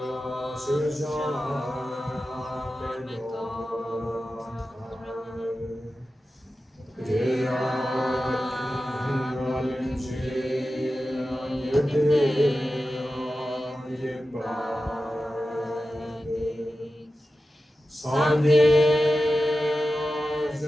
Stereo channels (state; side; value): normal; both; correlation 0.93